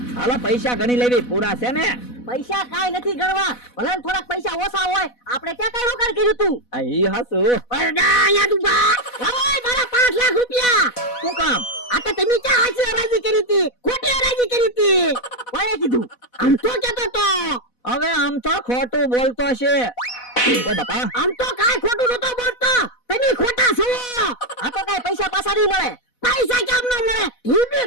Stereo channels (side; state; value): right; late; 4.1 ms